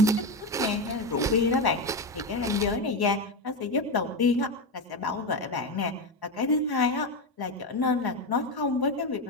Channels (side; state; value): both; normal; correlation 0.13